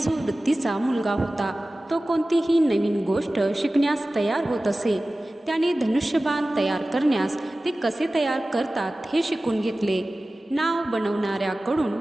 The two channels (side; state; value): both; normal; correlation 0.97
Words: वृत्तीचा मुलगा होता. तो कोणतीही नवीन गोष्ट शिकण्यास तयार होत असे. त्याने धनुष्यबाण तयार करण्यास ते कसे तयार करतात हे शिकून घेतले. नाव